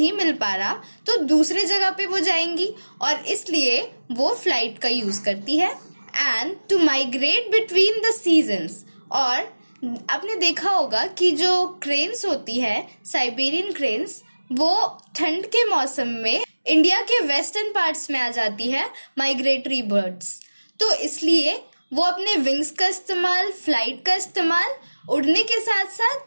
मिल पा रहा तो दूसरे जगह पे वो जाएंगी, और इसलिए वो फ्लाइट का यूज करती है। And to migrate between the seasons, और आपने देखा होगा कि जो क्रेन्स होती है, साइबेरियन क्रेन्स, वो ठंड के मौसम में इंडिया के वेस्टर्न पार्ट्स में आ जाती है, माइग्रेटरी बर्ड्स। तो इसलिए वो अपने विंग्स का इस्तेमाल, फ्लाइट का इस्तेमाल उड़ने के साथ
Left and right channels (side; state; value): both; inverted; correlation -1.00